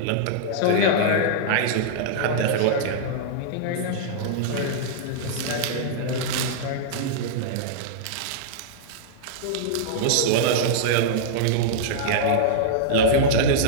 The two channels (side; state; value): both; different; correlation -0.02